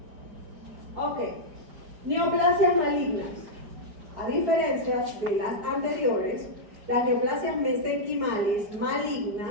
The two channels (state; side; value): late; left; 4.9 ms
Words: Ok. Neoplasias malignas. A diferencia de las anteriores, las neoplasias mesenquimales